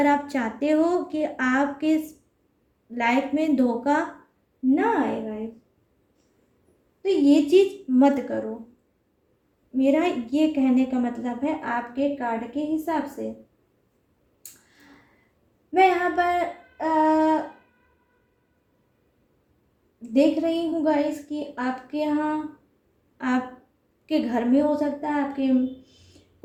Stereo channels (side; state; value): both; identical; correlation 1.00